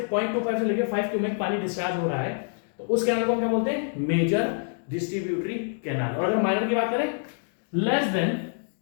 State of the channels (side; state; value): right; silent; 61 dB below the other